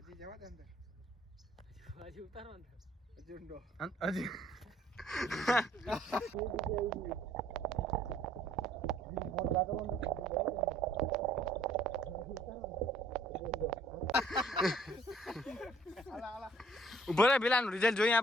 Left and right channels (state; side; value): normal; both; correlation 0.59